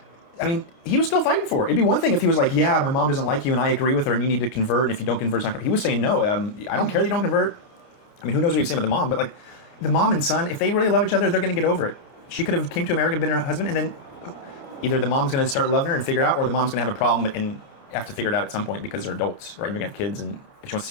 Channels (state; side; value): late; right; 29 ms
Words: I mean, he was still fighting for her. It'd be one thing if he was like, yeah, my mom doesn't like you, and I agree with her, and you need to convert, and if you don't convert, it's not... He was saying, no, I don't care that you don't convert. I mean, who knows what he was saying about the mom, but, like, the mom and son, if they really love each other, they're going to get over it. She could have came to America, been her husband, and then either the mom's going to start loving her and figure out, or the mom's going to have a problem and have to figure it out at some point because they're adults, right? You're going to have kids, and if she wants